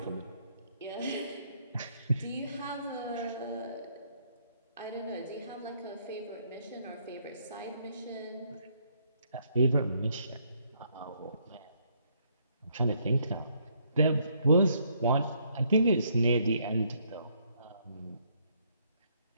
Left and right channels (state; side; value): inverted; both; correlation -0.70